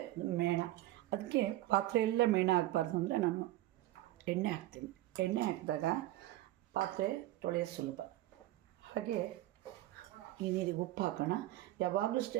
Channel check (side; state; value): left; quieter; 15.7 dB